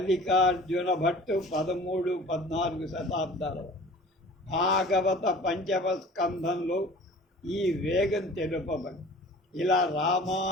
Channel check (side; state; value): both; normal; correlation 0.44